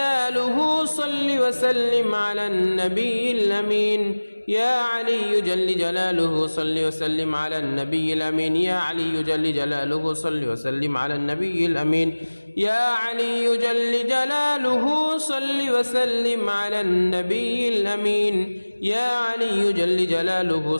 صل وسلم على النبي الأمين يا علي جل جلاله صل وسلم على النبي الأمين يا علي جل جلاله صل وسلم على النبي الأمين يا علي جل جلاله صل وسلم على النبي الأمين يا علي جل جلاله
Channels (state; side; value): inverted; both; correlation -1.00